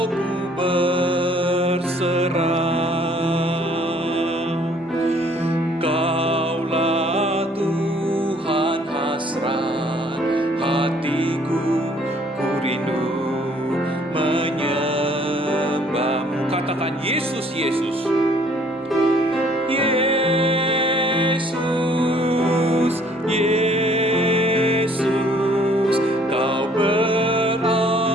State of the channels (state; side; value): normal; both; correlation 0.60